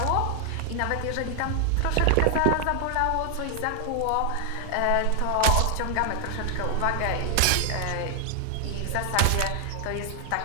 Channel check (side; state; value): both; different; correlation 0.00